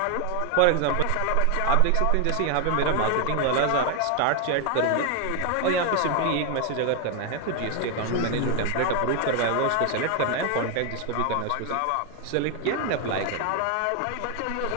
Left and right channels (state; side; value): different; both; correlation 0.00